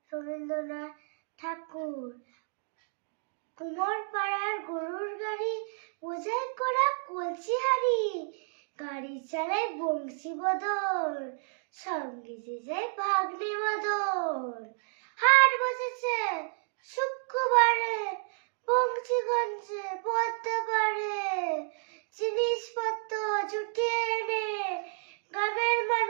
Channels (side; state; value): left; silent; 57 dB below the other